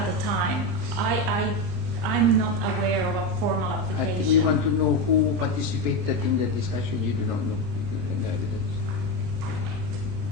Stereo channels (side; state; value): left; late; 39 ms